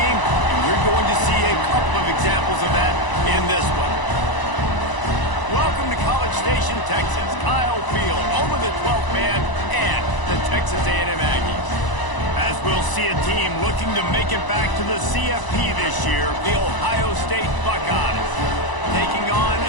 and we're going to see a couple of examples of that in this one. Welcome to College Station, Texas. Kyle Field, home of the 12th man and the Texas A&M Aggies. As we'll see a team looking to make it back to the CFP this year, the Ohio State Buckeyes. Taking on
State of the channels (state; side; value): late; right; 1.0 ms